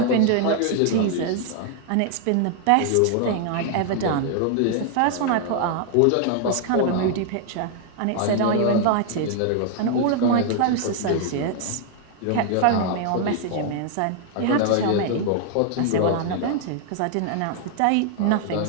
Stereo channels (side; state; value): both; different; correlation 0.00